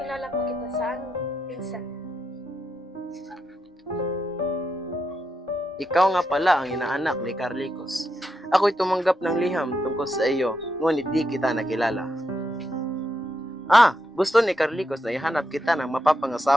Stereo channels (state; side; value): normal; both; correlation 0.83